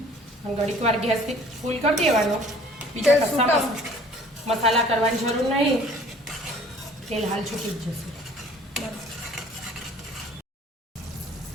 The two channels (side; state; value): both; normal; correlation 0.52